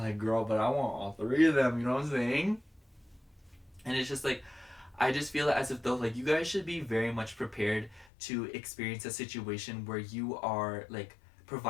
girl, but I want all three of them, you know what I'm saying? And it's just like, I just feel as if though like you guys should be very much prepared to experience a situation where you are like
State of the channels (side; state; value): right; drops out; at 8.1 s